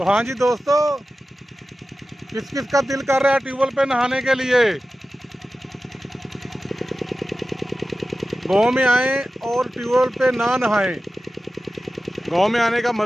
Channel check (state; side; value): normal; both; correlation 0.94